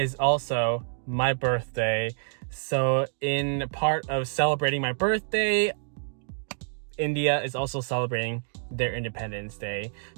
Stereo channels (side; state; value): left; silent; digital silence